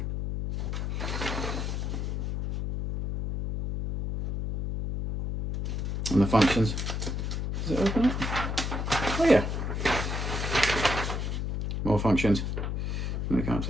And the functions. Does it open up? Oh yeah. More functions. Let me come up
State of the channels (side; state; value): left; noise; hum, 2 dB below the sound